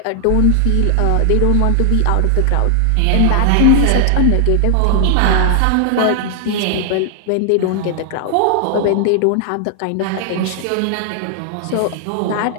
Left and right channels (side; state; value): both; different; correlation 0.00